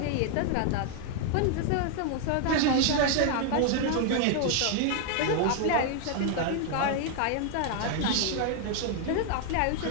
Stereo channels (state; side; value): different; both; correlation 0.00